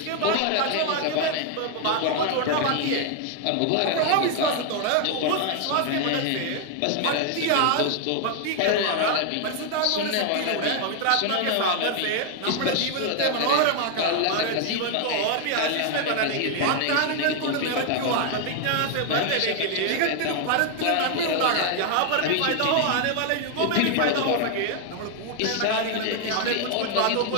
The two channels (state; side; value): different; both; correlation 0.00